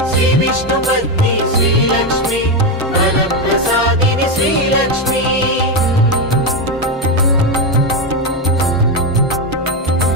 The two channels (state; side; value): normal; both; correlation 0.10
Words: श्रीविष्णुपत्नी श्रीलक्ष्मी वरप्रसादिनि श्रीलक्ष्मी